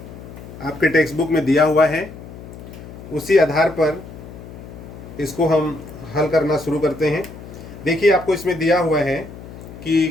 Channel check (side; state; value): left; noise; hum, 15 dB below the sound